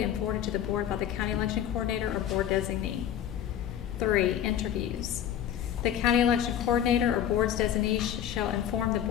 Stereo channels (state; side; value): quieter; right; 10.3 dB